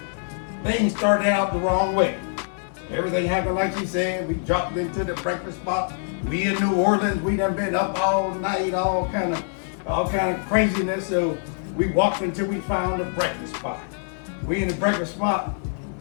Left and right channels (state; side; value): silent; right; digital silence